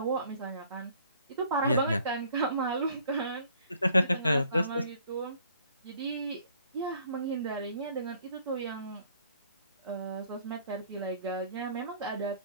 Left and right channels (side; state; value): both; inverted; correlation -0.59